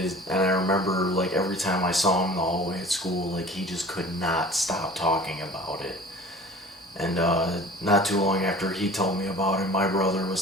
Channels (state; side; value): normal; both; correlation 0.44